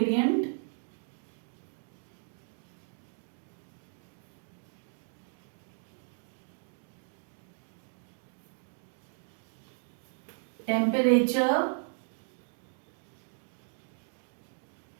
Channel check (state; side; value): silent; left; digital silence